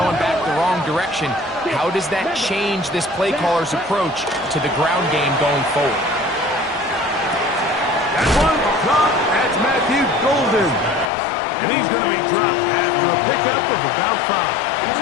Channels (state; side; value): drops out; right; at 11.1 s